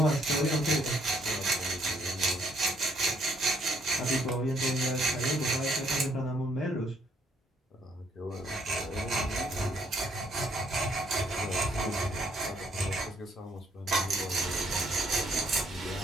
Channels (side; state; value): both; normal; correlation 0.69